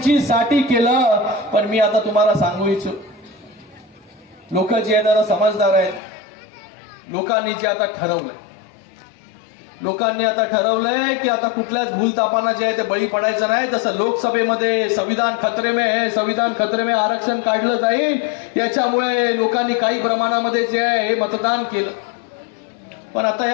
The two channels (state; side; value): drops out; right; at 6.0 s